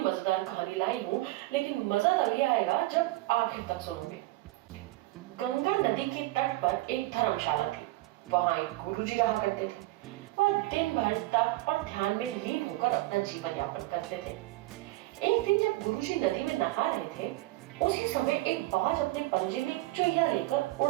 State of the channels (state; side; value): quieter; left; 19.0 dB